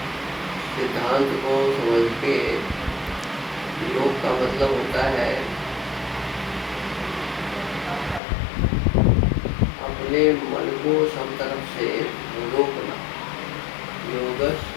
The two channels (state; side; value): drops out; right; at 8.2 s